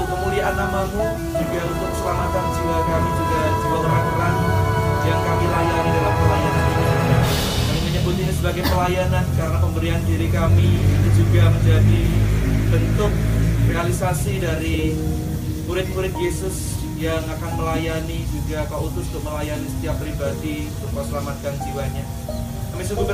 kemuliaan nama-Mu, juga untuk keselamatan jiwa kami, juga jiwa orang-orang yang kami layani dalam pelayanan ini. Kami menyebut ini sebagai pelayanan karena pemberian diri kami itu juga menjadi bentuk realisasi dari murid-murid Yesus yang akan melayani, juga Kau utus untuk melayani setiap pribadi untuk Kau selamatkan jiwanya. Kami sungguh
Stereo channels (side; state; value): both; identical; correlation 1.00